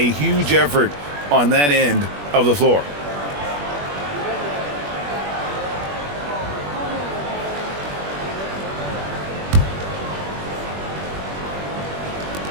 huge effort on that end of the floor.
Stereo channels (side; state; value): left; late; 21 ms